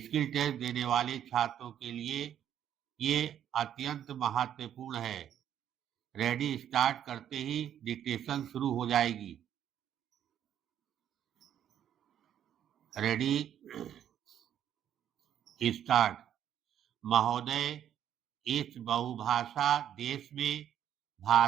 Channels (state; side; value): quieter; left; 10.0 dB